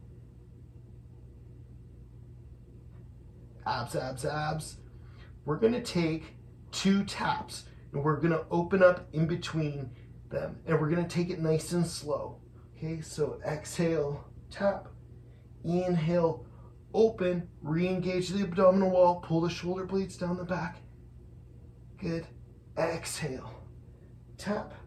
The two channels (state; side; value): identical; both; correlation 1.00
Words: Abs, abs, abs. We're gonna take 2 taps and we're gonna open up in between them, and we're gonna take it nice and slow. Okay, so exhale, tap, inhale, open, re-engage the abdominal wall, pull the shoulder blades down the back. Good. Exhale, tap,